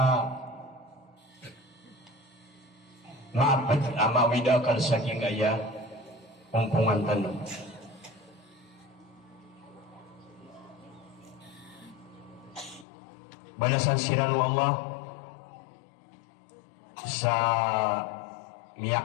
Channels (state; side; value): drops out; right; at 12.9 s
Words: maabad mawida kal sa kingaya kumpungan tanong. Balasan siranu Allah sa